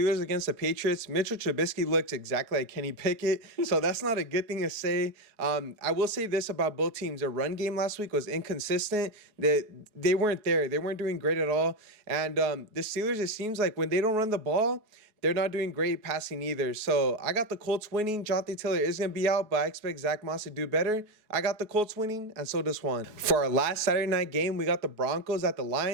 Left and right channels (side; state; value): left; late; 4.7 ms